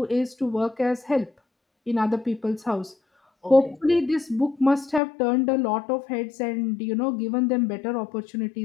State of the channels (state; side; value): drops out; right; at 5.0 s